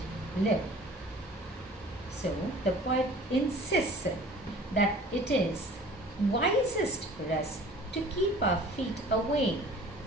live. So the poet insists that it is wisest for us to keep our feet away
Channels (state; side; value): normal; both; correlation 0.47